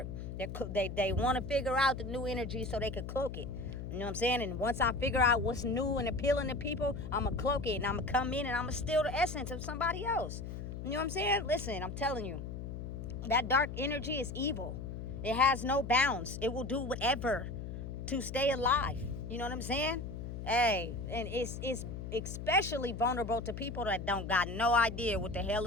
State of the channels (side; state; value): left; noise; hum, 7 dB below the sound